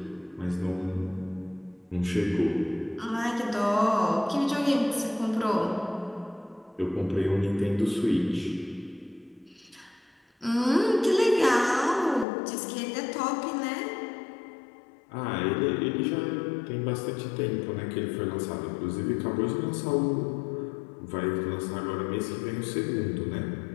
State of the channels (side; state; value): right; drops out; at 12.2 s